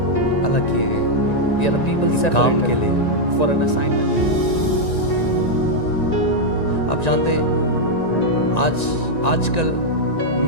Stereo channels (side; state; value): right; late; 1.9 ms